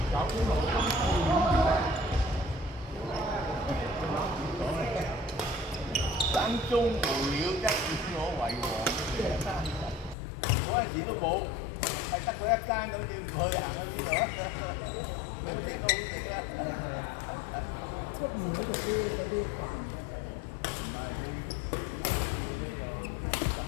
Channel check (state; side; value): drops out; right; at 10.2 s